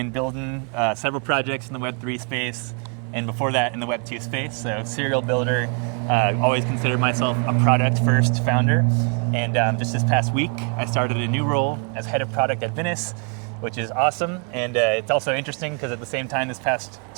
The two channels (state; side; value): quieter; left; 38.6 dB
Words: building several projects in the Web3 space, and before that in the Web2 space, so serial builder. Always considered myself a product-first founder, and just this past week, I started a new role as head of product at Venice, which is awesome, and it's also interesting because at the same time this past